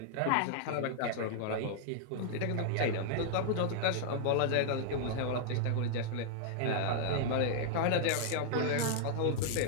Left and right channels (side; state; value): both; different; correlation -0.01